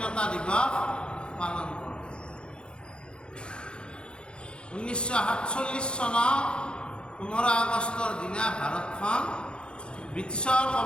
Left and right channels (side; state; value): right; late; 0.053 ms